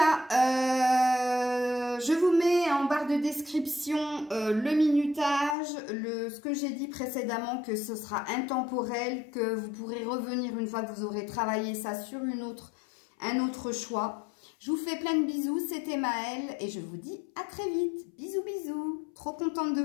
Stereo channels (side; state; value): right; drops out; at 5.6 s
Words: je vous mets en barre de description le minutage, ce que j'ai dit précédemment, que ce sera intemporel, que vous pourrez revenir une fois que vous aurez travaillé ça sur un autre choix. Je vous fais plein de bisous, c'était Maëlle et je vous dis à très vite. Bisous, bisous. Trop contente de